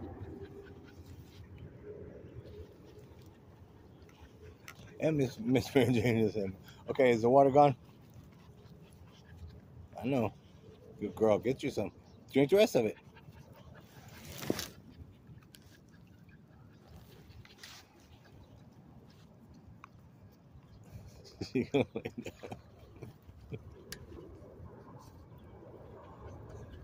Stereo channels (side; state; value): both; identical; correlation 1.00